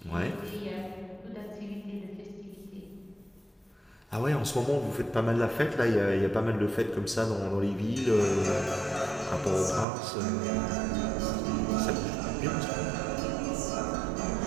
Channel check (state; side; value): drops out; left; at 9.9 s